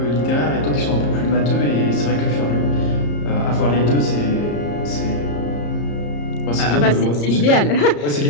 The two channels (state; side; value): late; right; 34 ms